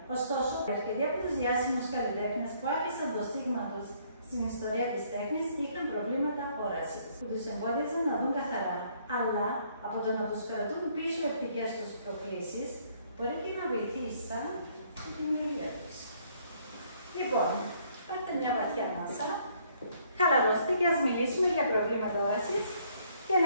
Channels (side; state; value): both; inverted; correlation -0.65